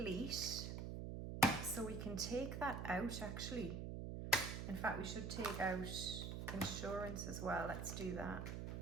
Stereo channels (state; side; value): noise; right; hum, 4 dB below the sound